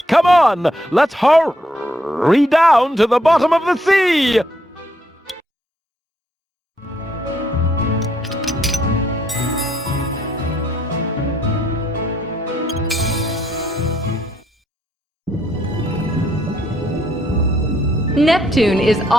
Come on, let's hurry down to the bottom of the sea! Neptune is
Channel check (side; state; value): both; normal; correlation 0.72